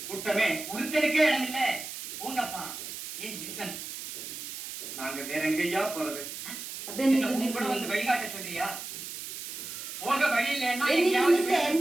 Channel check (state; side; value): noise; right; hiss, 9 dB below the sound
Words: கூட்டமே. ஒருத்தருக்கே இடம் இல்லை. போங்கப்பா. ஏன் ரீசன்? நாங்க வேற எங்கய்யா போறது? அப்படியே உன் கூட வந்து வழிகாட்ட சொல்றியா? போக வழி இல்லைன்னா